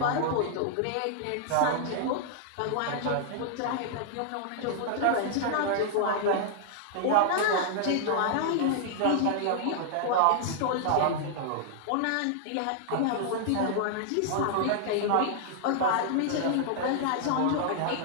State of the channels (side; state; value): both; different; correlation -0.01